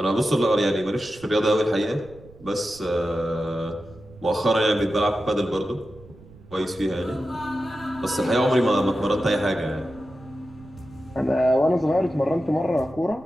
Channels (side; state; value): right; noise; rumble, 22 dB below the sound